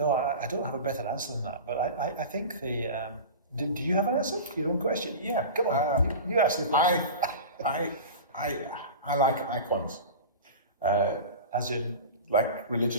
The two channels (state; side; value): inverted; both; correlation -0.31